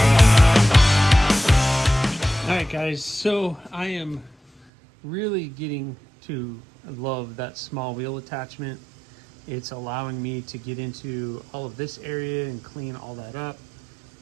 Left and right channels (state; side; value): drops out; left; at 4.7 s